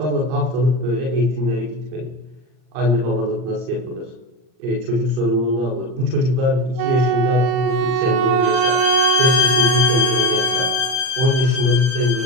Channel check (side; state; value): left; late; 39 ms